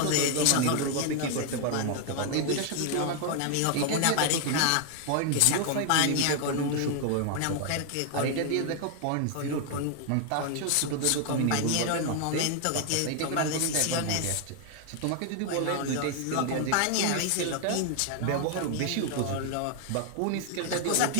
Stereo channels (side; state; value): both; different; correlation 0.00